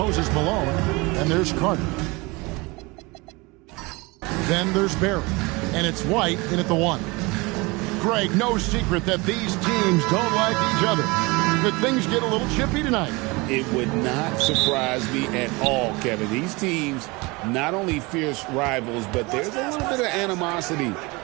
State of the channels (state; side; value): quieter; left; 25.2 dB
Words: Malone, and there's Carter. Then there's Barry, and it's White in at the 1. Greg, no secret that these teams don't like each other. Could things get a little chippy tonight? It would not surprise me at all, Kevin. These teams, not only fierce rivals, but there's a little bit of animosity